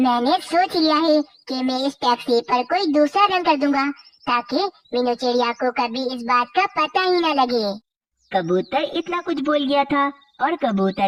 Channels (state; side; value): identical; both; correlation 1.00